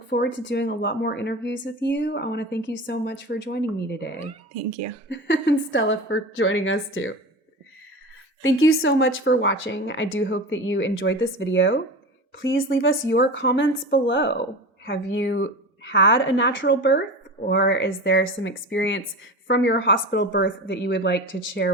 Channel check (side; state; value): both; normal; correlation 0.29